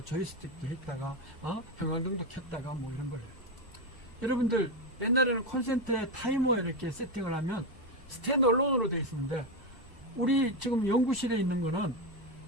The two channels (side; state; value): both; normal; correlation 0.11